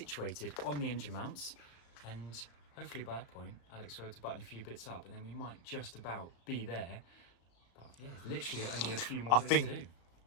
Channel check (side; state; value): right; late; 34 ms